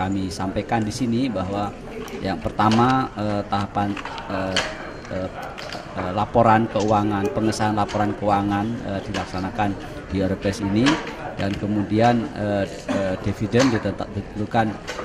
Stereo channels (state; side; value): identical; both; correlation 1.00